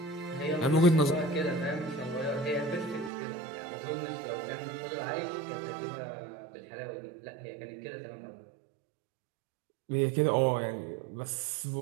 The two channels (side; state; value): left; drops out; at 3.1 s